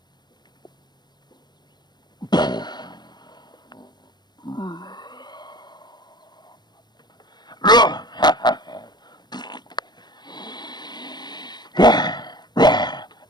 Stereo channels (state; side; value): late; right; 0.21 ms